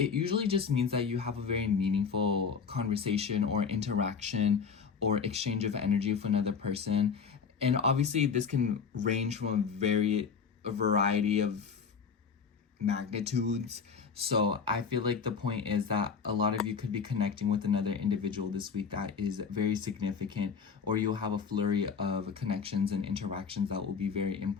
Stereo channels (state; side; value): quieter; right; 5.9 dB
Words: usually just means that you have a very meaningful conversation or interaction or exchange of energy with another person. And obviously this can range from a variety of magnitudes. So I feel like the point is that a lot of you could be connecting with another individual this week that is very significant, or you'll have a flurry of connections and interactions that will be very